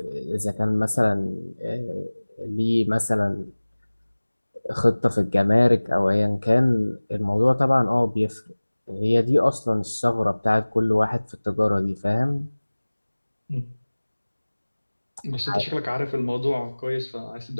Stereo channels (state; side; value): inverted; both; correlation -1.00